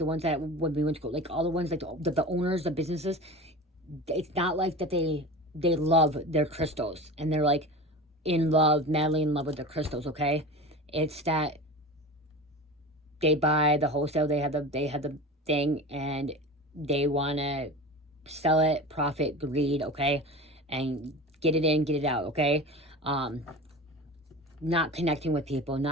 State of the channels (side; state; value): both; normal; correlation 0.32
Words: ones that when we went to go, like, all the ones, like, the owners, the businesses, it's not like that they love their crystals, and they're, like, in love, madly in love with their crystals, okay? It's that they buy the wholesale, they have the thing, and they want to sell it, profit, greed, okay? And get it in, get it out, okay? Not connecting with people,